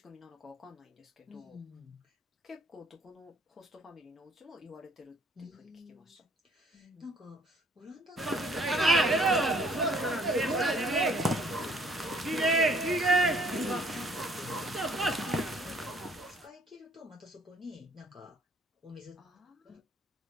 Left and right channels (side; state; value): both; normal; correlation 0.60